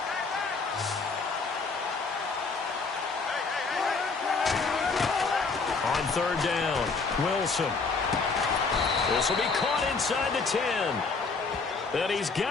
On third down, Wilson. This will be caught inside the 10. And he's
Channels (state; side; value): quieter; right; 4.4 dB